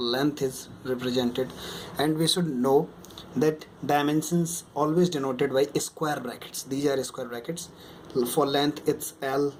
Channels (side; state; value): both; identical; correlation 1.00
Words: is represented. And we should know that dimensions always denoted by square brackets. These are square brackets. For length it's L,